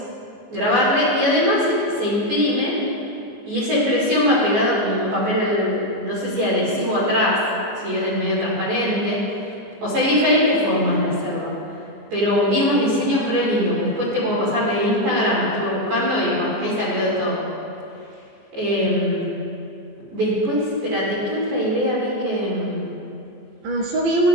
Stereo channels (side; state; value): left; late; 14 ms